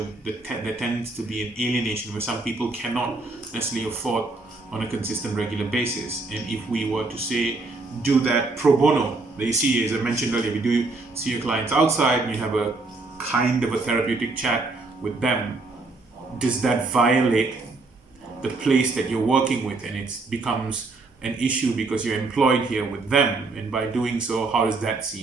there tends to be an alienation where some people cannot necessarily afford on a consistent regular basis. And if we were to say do that pro bono, you see, as I mentioned earlier, we do see your clients outside and you have a kind of a therapeutic chat with them. Does that violate the place that you're working with, and it becomes an issue because you're employed here with them, and by doing so, how does that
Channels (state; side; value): quieter; left; 3.5 dB